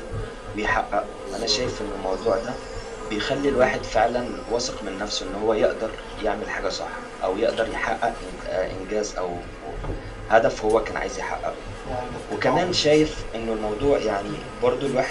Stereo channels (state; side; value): identical; both; correlation 1.00